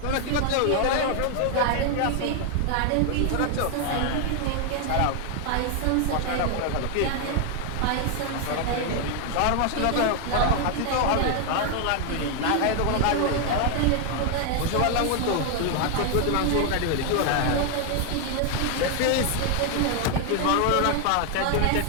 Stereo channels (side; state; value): both; different; correlation 0.00